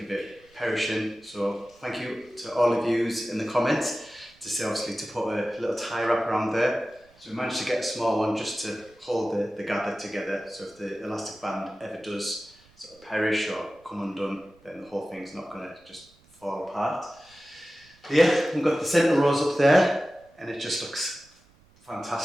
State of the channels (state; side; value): noise; right; rumble, 30 dB below the sound